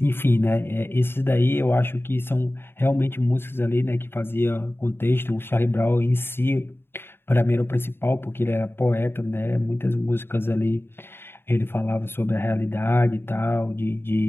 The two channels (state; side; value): late; right; 0.11 ms